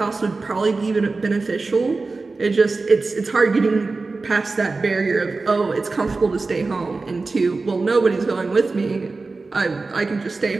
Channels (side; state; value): left; quieter; 3.8 dB